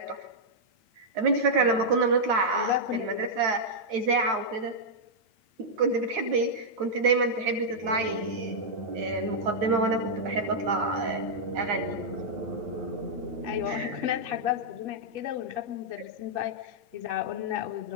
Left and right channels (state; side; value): late; left; 8.8 ms